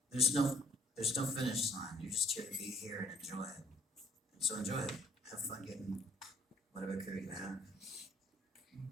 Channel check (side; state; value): both; normal; correlation 0.63